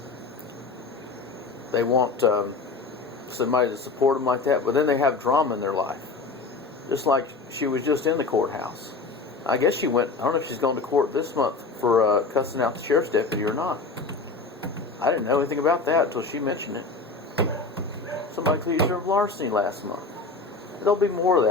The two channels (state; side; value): quieter; right; 4.0 dB